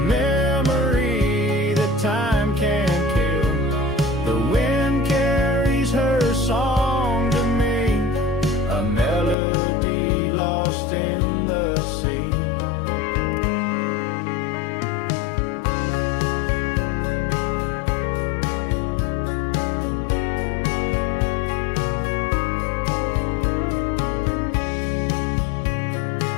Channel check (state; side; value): drops out; right; at 9.3 s